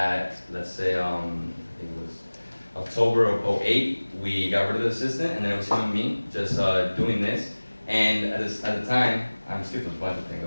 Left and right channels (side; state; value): both; inverted; correlation -1.00